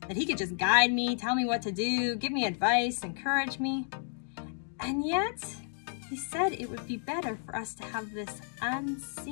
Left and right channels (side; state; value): right; silent; 57 dB below the other